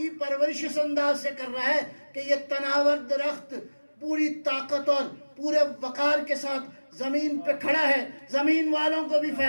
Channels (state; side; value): inverted; both; correlation -1.00